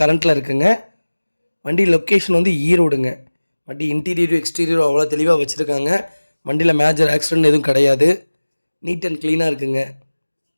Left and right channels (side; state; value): both; inverted; correlation -1.00